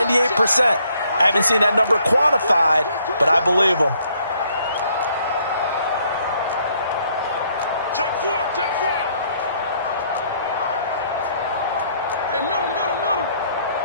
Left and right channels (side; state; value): both; inverted; correlation -0.67